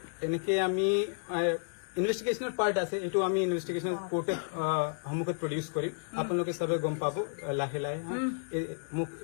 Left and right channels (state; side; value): silent; right; 57 dB below the other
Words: এনেকে আমি ইনভেষ্টিগেশ্যনৰ পাৰ্ট আছে এইটো আমি ইনভেষ্টিগেশ্যন কোৰ্টত সন্মুখত প্ৰডিউচ কৰিম আপোনালোকে চবে গম পাব লাহে লাহে মোক